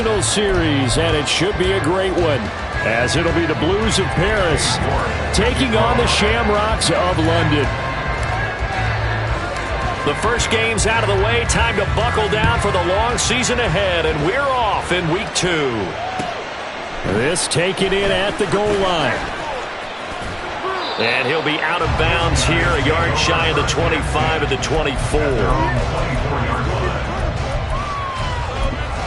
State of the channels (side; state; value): both; identical; correlation 1.00